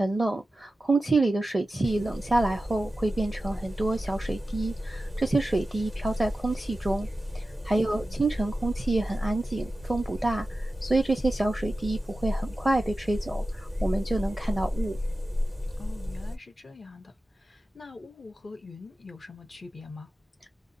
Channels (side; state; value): both; normal; correlation 0.94